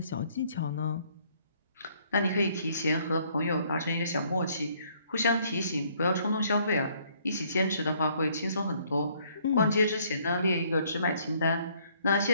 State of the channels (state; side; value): inverted; both; correlation -0.65